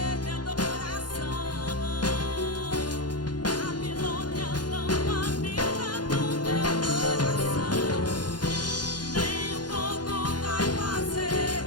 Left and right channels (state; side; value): late; right; 0.70 ms